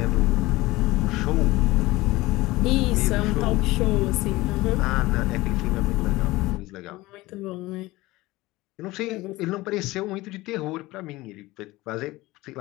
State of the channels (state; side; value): quieter; right; 19.5 dB